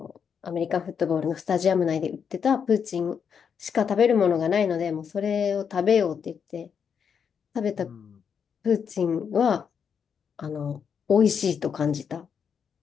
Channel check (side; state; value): right; quieter; 7.0 dB